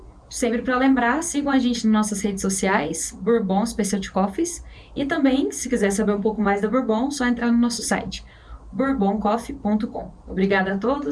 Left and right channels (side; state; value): both; identical; correlation 1.00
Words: sempre para lembrar, sigam a gente nas nossas redes sociais, Bourbon Specialty Coffees. E também, se quiser saber um pouco mais da Bourbon, só entrar no nosso site, bourboncoffee.com. Obrigada a